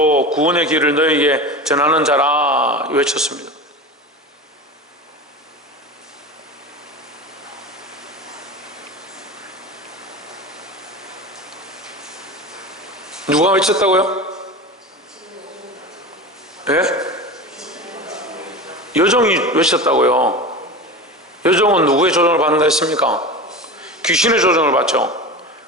구원의 길을 너에게 전하는 자라 외쳤습니다. 누가 외쳤다고요? 예? 여종이 외쳤다고요. 여종은 누구의 조정을 받는다 했습니까? 귀신의 조정을 받죠.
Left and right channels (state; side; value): normal; both; correlation 0.29